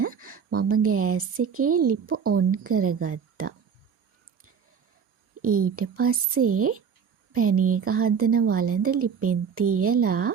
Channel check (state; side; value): quieter; left; 6.7 dB